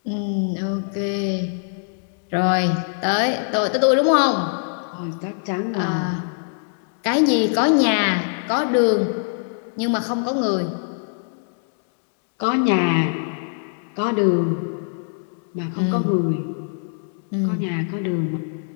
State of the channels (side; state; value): right; silent; digital silence